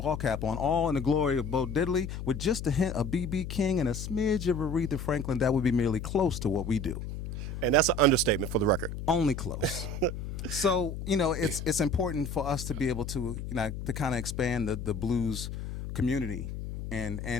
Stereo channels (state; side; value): noise; left; hum, 7 dB below the sound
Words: cap on, all in the glory of Bo Diddley, with just a hint of B.B. King and a smidge of Aretha Franklin, that would be merely close to what we do. And that's an understatement for the record. Only close. So, it's important for us to be able to, to kind of expand the blues community and